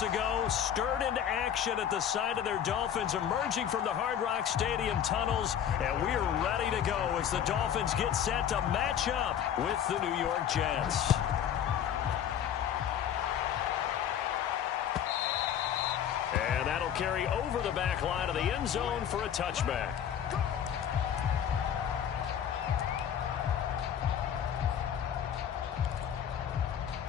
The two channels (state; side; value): quieter; right; 9.3 dB